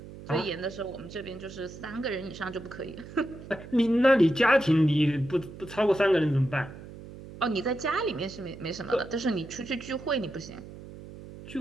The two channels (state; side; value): noise; right; hum, 15 dB below the sound